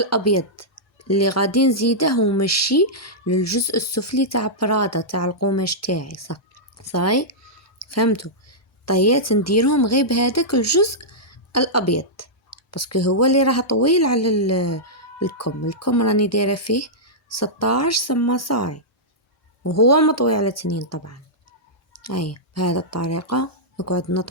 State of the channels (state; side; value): normal; both; correlation -0.11